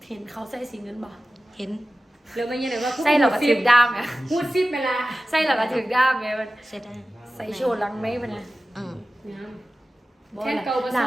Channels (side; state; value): both; normal; correlation 0.96